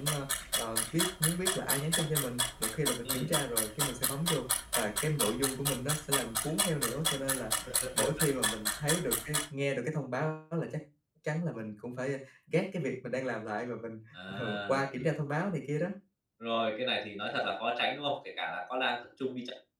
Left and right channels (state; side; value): identical; both; correlation 1.00